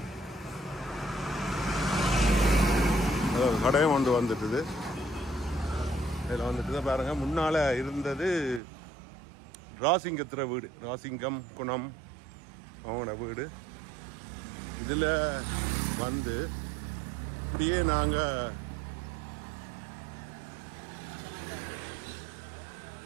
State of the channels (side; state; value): left; drops out; at 8.6 s